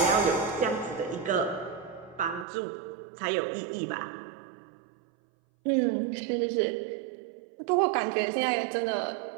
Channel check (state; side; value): drops out; left; at 2.5 s